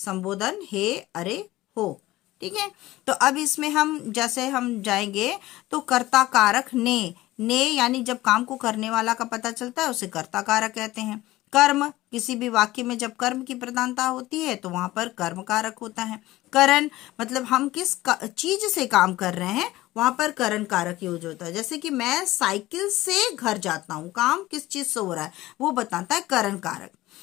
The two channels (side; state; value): right; quieter; 17.2 dB